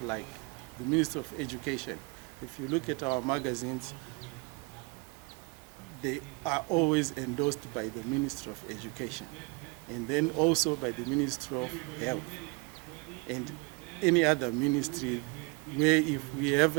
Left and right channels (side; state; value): left; quieter; 29.1 dB